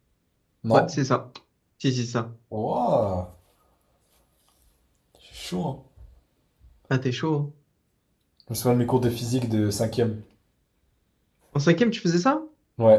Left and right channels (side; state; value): both; identical; correlation 1.00